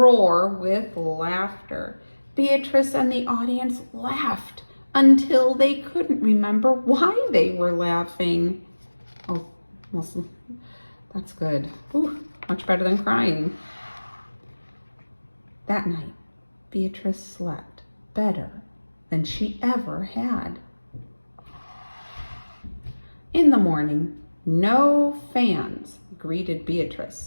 with laughter. Beatrice and the audience laughed until they couldn't remember why they were laughing. Oh, well, that's good. Ooh, much better than crying. That night, Beatrice slept better than she ever had. In the morning, no fans greeted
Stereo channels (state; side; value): inverted; both; correlation -1.00